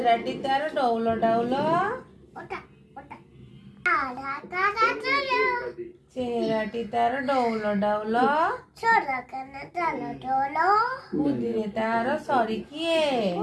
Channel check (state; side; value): identical; both; correlation 1.00